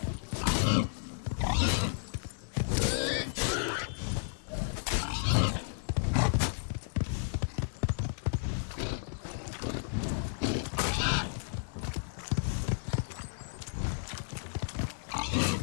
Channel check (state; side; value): silent; right; 56 dB below the other